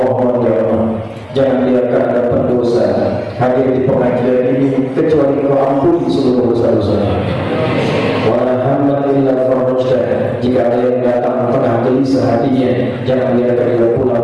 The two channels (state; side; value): identical; both; correlation 1.00